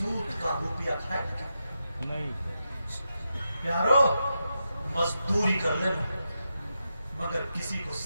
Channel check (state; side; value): inverted; both; correlation -0.87